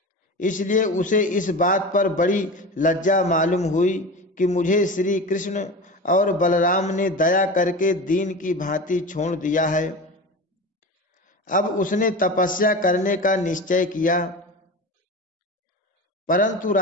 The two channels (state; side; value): normal; both; correlation 0.29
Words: इसलिए उसे इस बात पर बड़ी लज्जा मालूम हुई कि मुझे श्री कृष्ण और बलराम ने दया करके दीन की भांति छोड़ दिया है। अब उसने तपस्या करने का निश्चय किया, परंतु